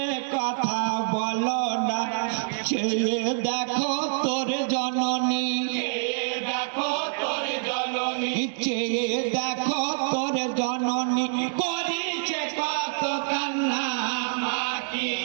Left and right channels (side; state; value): left; silent; digital silence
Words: কথা বলো না চেয়ে দেখো তোর জননী দেখো তোর জননী চেয়ে দেখো তোর জননী করিছে কত কান্না মা কি